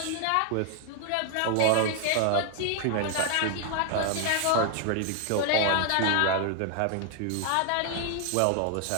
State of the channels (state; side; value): different; both; correlation 0.00